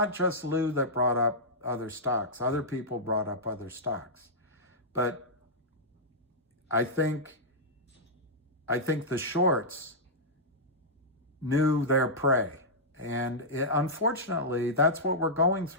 just Lou that brought up other stocks. Other people brought up other stocks. But I think the shorts knew their prey. And unfortunately, that's what we're going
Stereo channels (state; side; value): normal; both; correlation -0.11